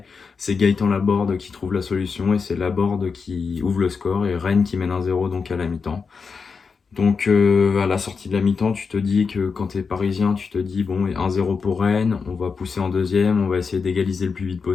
c'est Gaëtan Laborde qui trouve la solution et c'est Laborde qui ouvre le score et Rennes qui mène 1-0 donc à la mi-temps. Donc à la sortie de la mi-temps, tu te dis que quand tu es parisien, tu te dis bon, 1-0 pour Rennes, on va pousser en deuxième, on va essayer d'égaliser le plus vite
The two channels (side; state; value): right; quieter; 5.3 dB